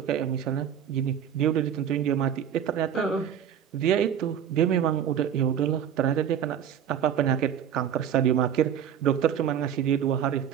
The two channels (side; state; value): left; quieter; 9.1 dB